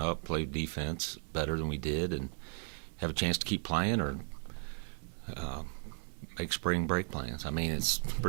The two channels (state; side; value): silent; left; 54 dB below the other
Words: play defense better than we did, and have a chance to keep playing, or make spring break plans. I mean, it's